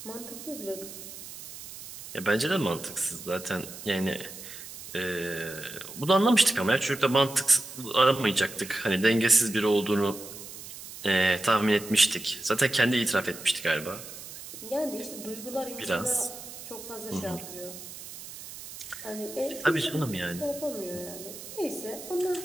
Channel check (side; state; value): right; noise; hiss, 13 dB below the sound